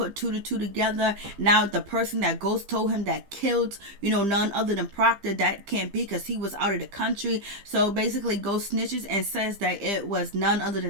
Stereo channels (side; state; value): left; late; 15 ms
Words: 2 to 2 together. Now the person that Ghost told him that killed, none other than Proctor, that can't be, because he was out of the country. So basically Ghost snitches and says that it was none other